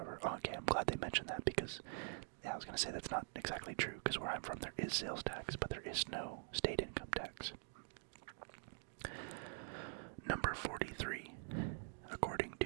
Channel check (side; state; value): left; silent; digital silence